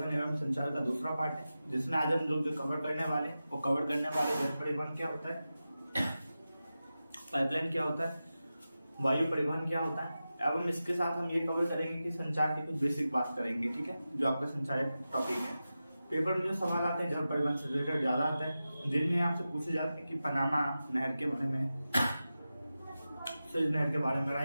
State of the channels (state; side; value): inverted; both; correlation -0.93